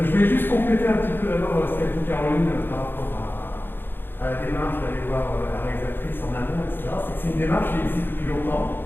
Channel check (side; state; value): right; late; 0.10 ms